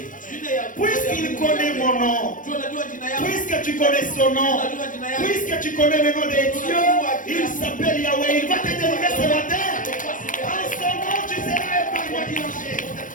Puisqu'il connaît mon nom, puisque tu connais son nom, puisque tu connais le nom de Dieu, il s'appelle Yahweh. Il va te délivrer ce matin. En son nom, tu seras épargné du danger.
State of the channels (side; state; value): right; late; 0.38 ms